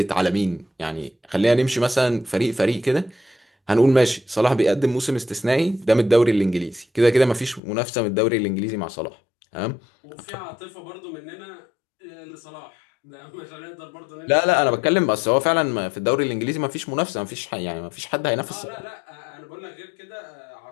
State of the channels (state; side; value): drops out; right; at 7.6 s